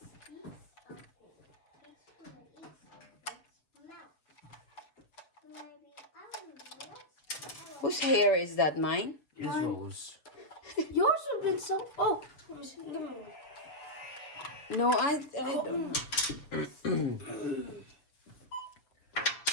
of it, it's gonna eat something. Mouth. Maybe I don't know. Whose hair is that? Mine? Izzo's. Yours have been so. Oh, let me see. Give me one. No, I don't know.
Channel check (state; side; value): late; right; 7.0 ms